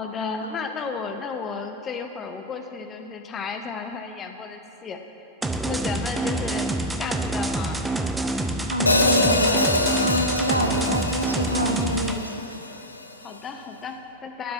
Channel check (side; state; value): both; normal; correlation -0.08